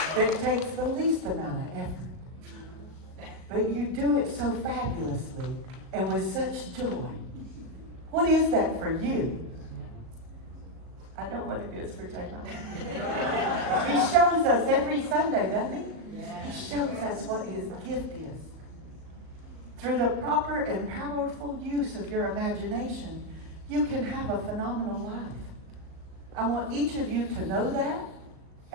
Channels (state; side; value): late; left; 38 ms